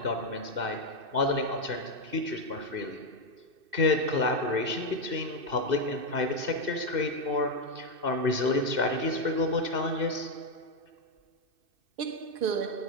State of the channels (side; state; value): left; late; 2.6 ms